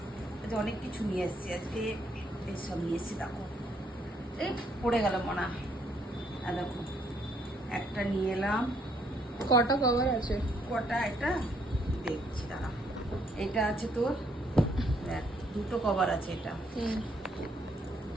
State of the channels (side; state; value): both; normal; correlation 0.70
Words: আজ অনেক কিছু নিয়ে এসেছি, আজকে এইসব নিয়ে এসেছি। দেখো এই পড়ে গেল মনে হয়। আর দেখো একটা নিয়ে এলাম। কটা কভার আছে? কটা এটা দেখছি, দাঁড়া। এটা আছে তোর, দেখ দুটো কভার আছে। এটা